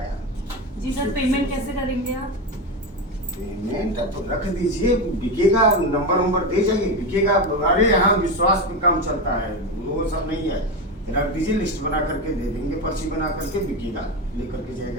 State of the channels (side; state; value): both; normal; correlation 0.16